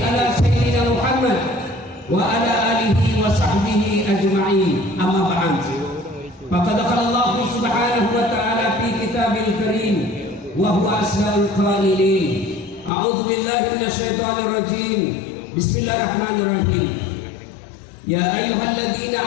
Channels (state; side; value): drops out; right; at 12.9 s